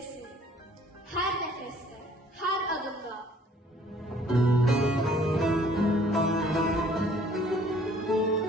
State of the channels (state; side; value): normal; both; correlation 0.58